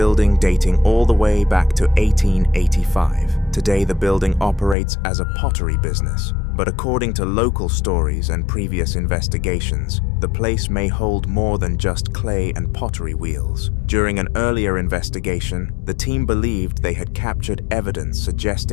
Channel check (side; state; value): right; drops out; at 4.8 s